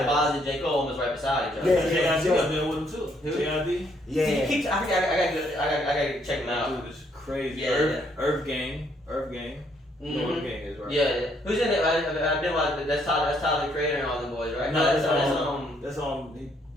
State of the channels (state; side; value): normal; both; correlation 0.70